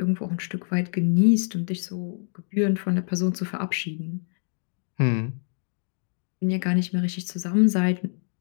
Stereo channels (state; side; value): silent; right; 61 dB below the other